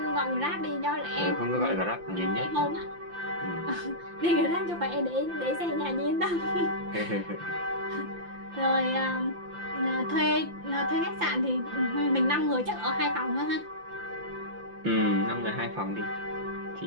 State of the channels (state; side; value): late; left; 5.8 ms